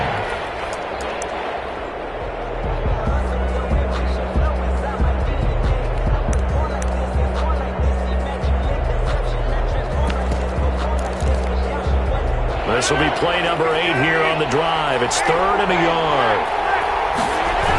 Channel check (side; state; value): both; identical; correlation 1.00